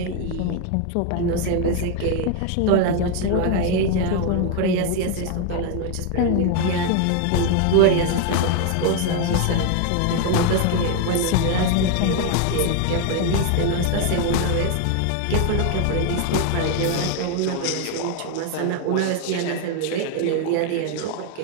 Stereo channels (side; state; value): both; different; correlation 0.01